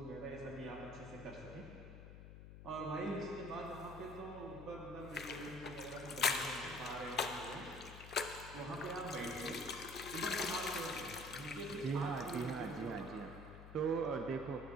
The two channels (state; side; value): noise; left; hum, 12 dB below the sound